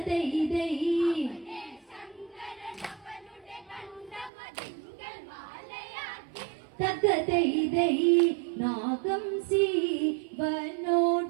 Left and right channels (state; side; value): drops out; left; at 4.3 s